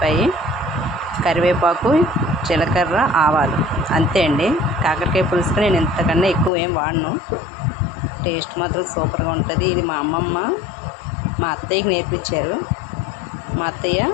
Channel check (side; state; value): right; drops out; at 6.5 s